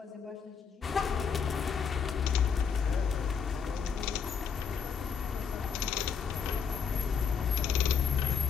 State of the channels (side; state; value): right; quieter; 6.5 dB